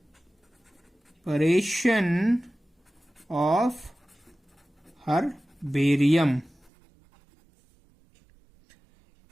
Preparation of herbarium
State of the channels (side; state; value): left; drops out; at 6.7 s